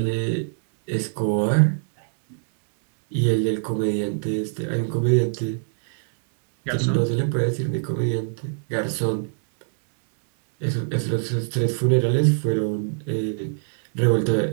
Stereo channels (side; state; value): left; silent; 63 dB below the other